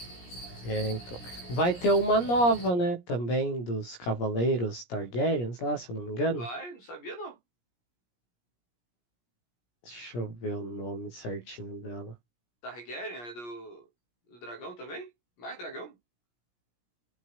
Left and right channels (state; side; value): late; right; 17 ms